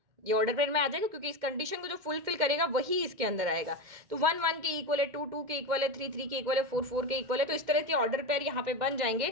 ये ऑर्डर पेयर में आ जाएगा, क्योंकि इस कंडीशन को जो फुलफिल करेगा वही इसके अंदर आएगा। तो 1 1 के इक्वल है, 2 2 के इक्वल है, 3 3 के इक्वल है, 4 4 के इक्वल है। तो इस तरह के ऑर्डर पेयर यहाँ पे बन जाएंगे।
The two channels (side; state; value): left; late; 2.1 ms